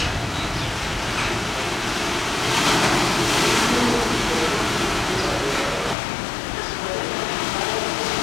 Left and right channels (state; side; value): drops out; right; at 6.0 s